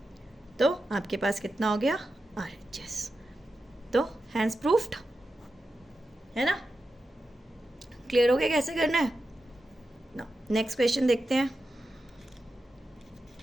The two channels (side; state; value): both; normal; correlation 0.90